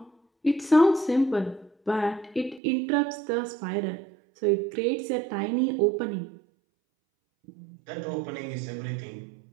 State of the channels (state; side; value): drops out; left; at 2.6 s